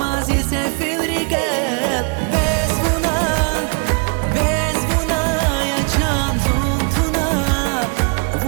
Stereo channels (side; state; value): left; quieter; 35.0 dB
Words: ise filrikel Bezvuna Yacan zuntuna